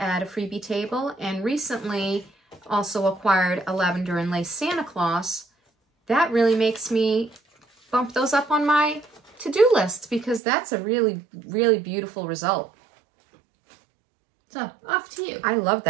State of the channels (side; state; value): left; drops out; at 10.4 s